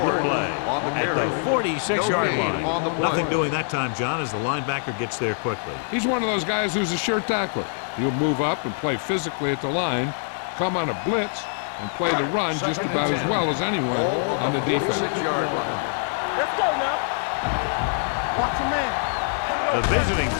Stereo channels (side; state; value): right; silent; digital silence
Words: the play at the 46-yard line. Nothing doing that time, John, as the linebacker gets there quickly. He's one of those guys who's a sure tackler. He'll move up and play physically at the line, come on a blitz, and play the run just about as well as anyone on the defense. Let's go now. Get it up. Watch your man. The visiting